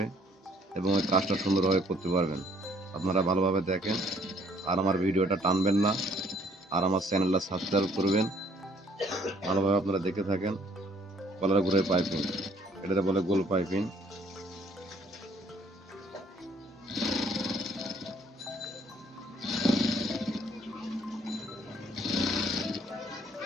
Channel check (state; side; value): normal; both; correlation 0.62